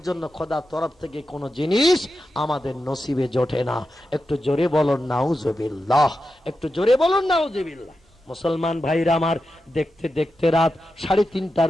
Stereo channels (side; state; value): both; normal; correlation 0.90